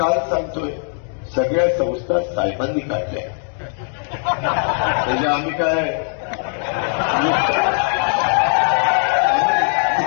सांगतोय सगळ्या संस्था साहेबांनी काढल्या. म्हणजे आम्ही काय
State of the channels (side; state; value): right; silent; 58 dB below the other